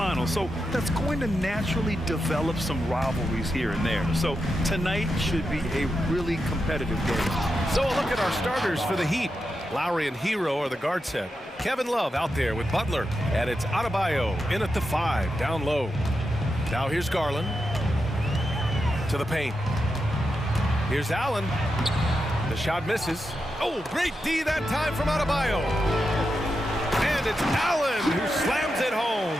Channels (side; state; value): both; normal; correlation 0.87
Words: So that's going to naturally develop some rivalries here and there. So tonight should be a really competitive game. So a look at our starters for the Heat. Lowry and Hero are the guard set. Kevin Love out there with Butler. And it's Adebayo in at the 5, down low. Now here's Garland. To the paint. Here's Allen. The shot misses. Oh, great D that time from Adebayo. And it's Allen who slams it home.